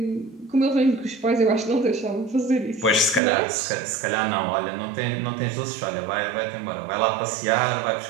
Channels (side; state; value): left; drops out; at 3.2 s